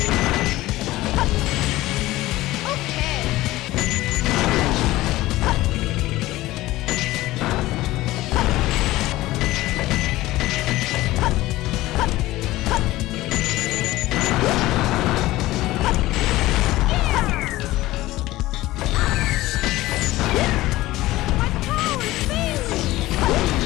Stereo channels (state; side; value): quieter; right; 17.4 dB